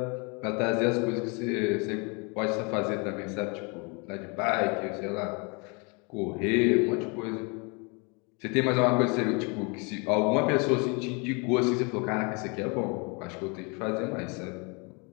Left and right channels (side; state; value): right; quieter; 32.1 dB